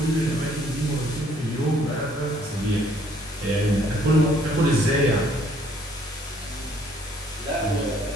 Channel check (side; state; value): both; normal; correlation 0.63